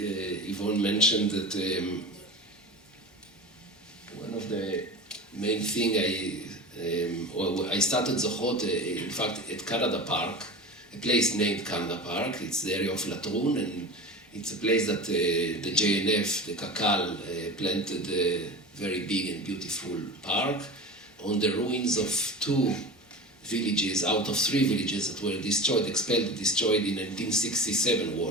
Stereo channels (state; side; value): normal; both; correlation 0.31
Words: mentioned that one of the main thing I started Zochrot, in fact, at Canada Park, a place named Canada Park. It's the area of Latrun, and it's a place that the JNF, the Kakal, planted a very big and beautiful park on the ruins of 2 villages out of 3 villages that were destroyed, expelled, destroyed in 1967